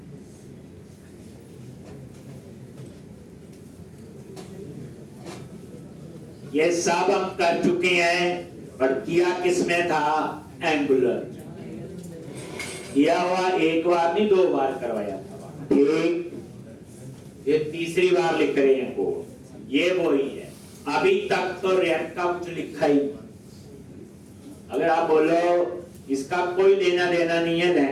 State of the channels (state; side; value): identical; both; correlation 1.00